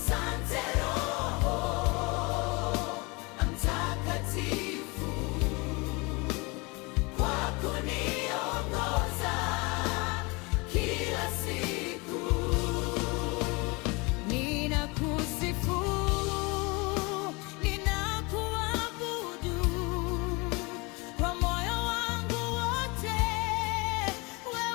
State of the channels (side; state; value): right; quieter; 27.3 dB